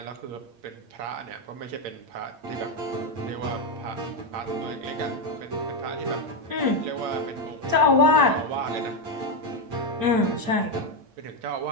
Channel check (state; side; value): late; left; 8.7 ms